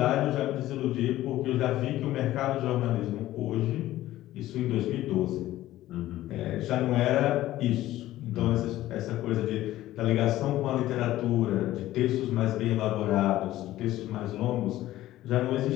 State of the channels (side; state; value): right; quieter; 15.0 dB